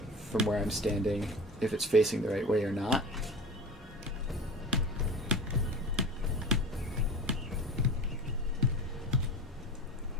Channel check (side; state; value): both; normal; correlation 0.33